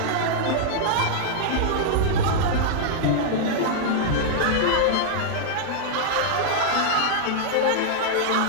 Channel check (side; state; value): both; different; correlation -0.01